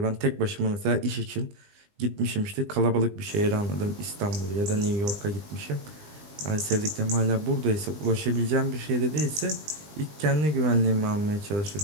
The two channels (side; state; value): left; late; 20 ms